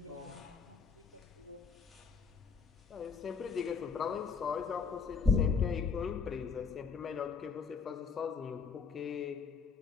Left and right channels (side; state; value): right; quieter; 5.4 dB